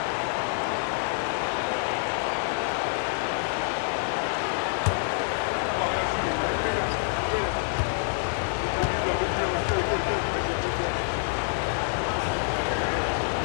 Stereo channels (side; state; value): right; silent; 60 dB below the other